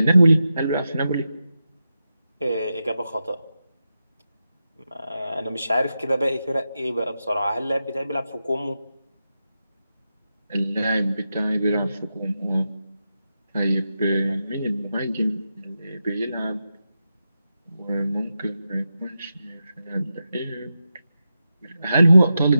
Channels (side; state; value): both; inverted; correlation -0.89